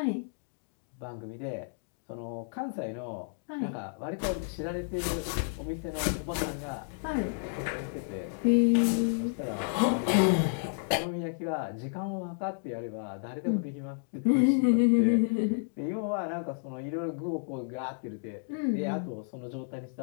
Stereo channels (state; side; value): silent; right; digital silence